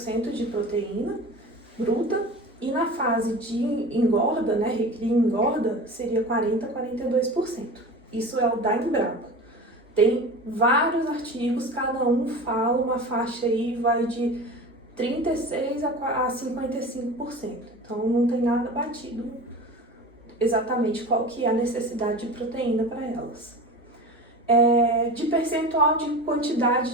de proteína bruta, e na fase de engorda, né, recria e engorda, seria 42%. Isso é o da Embrapa. Tem vários artigos, cada um fala uma faixa aí, vai de 36% a 55%. Então não tem nada batido exatamente qual que é a necessidade de proteína para elas. De percentual de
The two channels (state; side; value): normal; both; correlation 0.33